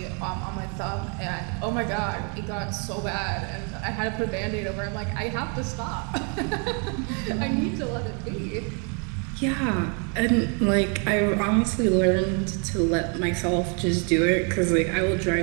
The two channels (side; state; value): left; quieter; 37.7 dB